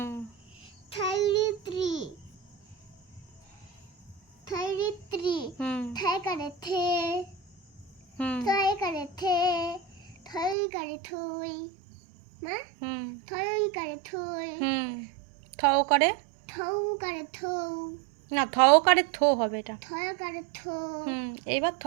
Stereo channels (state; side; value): drops out; left; at 10.6 s